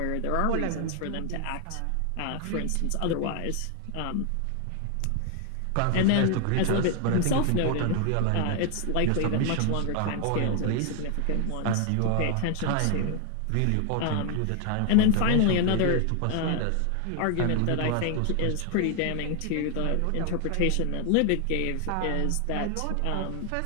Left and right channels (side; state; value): both; different; correlation 0.00